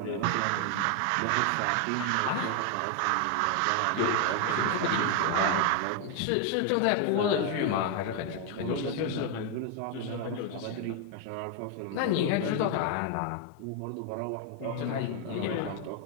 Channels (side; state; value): both; different; correlation 0.01